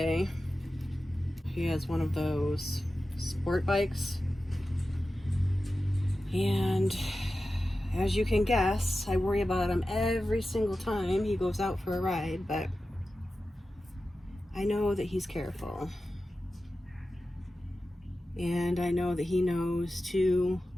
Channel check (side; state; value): both; normal; correlation 0.93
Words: He has one of those sport bikes. And as you can guess, I worry about him every single time he goes out for a ride, but I know that he's careful. And I know that he knows to